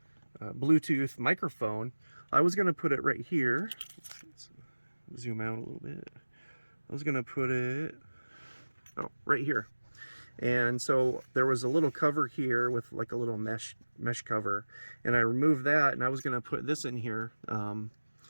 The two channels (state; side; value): inverted; both; correlation -1.00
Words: Bluetooth microphone, I was going to put it right here. Let's zoom out a little bit. I was going to put it right here. And so there was a little cover here with like a little mesh cover, and I removed that, and I was going to put this in here.